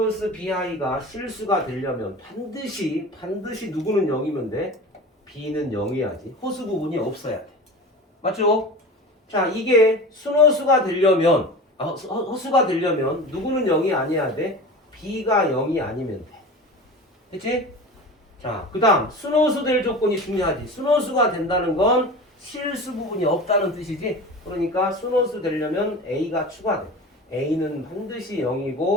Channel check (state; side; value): normal; both; correlation 0.34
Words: BI가 실수가 되려면 반드시 누구는 0이면 돼? B는 0이야지. 허수 부분이 없어야 돼. 맞죠? 자, 이게 순허수가 되려면 허수가 되려면 누구는 0이 아니어야 돼? B가 0이 아니면 돼. 그치? 자, 그 다음 순허수 될 조건이 중요하지. 순허수가 된다는 건 실수 부분이 없다는 뜻이지. 그러니까 순허수 되려면 A가 추가돼. A는 반드시